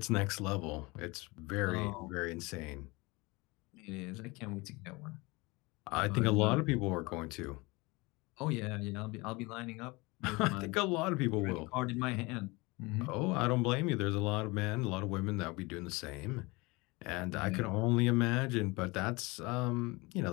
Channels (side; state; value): right; quieter; 24.6 dB